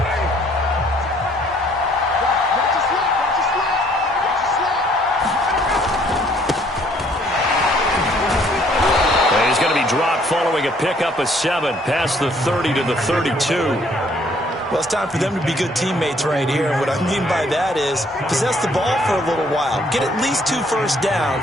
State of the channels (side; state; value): both; normal; correlation 0.63